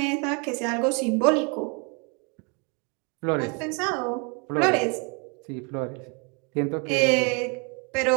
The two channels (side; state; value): left; quieter; 34.1 dB